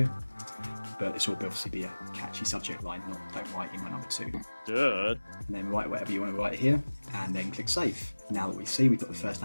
But this will obviously be a catchy subject line, not don't write email number 2. Duh. And then write whatever you want to write here, and then click save. Now that we see we've got the first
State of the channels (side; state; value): both; inverted; correlation -1.00